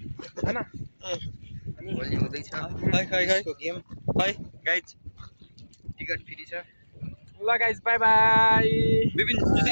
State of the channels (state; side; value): inverted; both; correlation -1.00